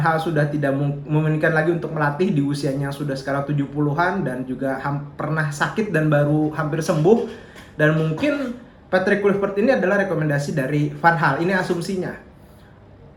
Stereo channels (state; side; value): identical; both; correlation 1.00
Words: sudah tidak memungkinkan lagi untuk melatih di usianya sudah sekarang 70-an dan juga pernah sakit dan baru hampir sembuh. Dan mungkin Patrick Kluivert ini adalah rekomendasi dari Van Gaal, ini asumsinya.